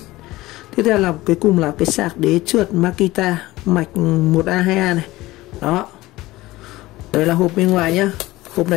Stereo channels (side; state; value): right; quieter; 18.4 dB